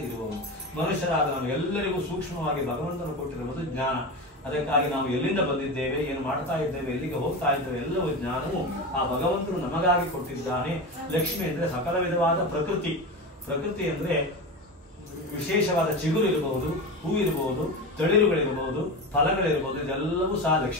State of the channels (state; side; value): normal; both; correlation 0.23